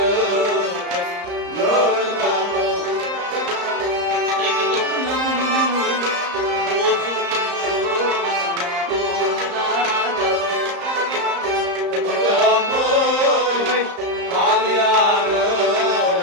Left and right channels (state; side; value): late; left; 34 ms